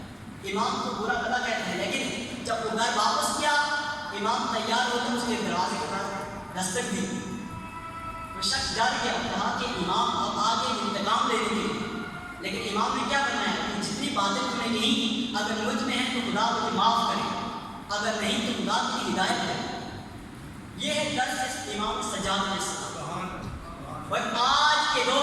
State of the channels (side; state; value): both; identical; correlation 1.00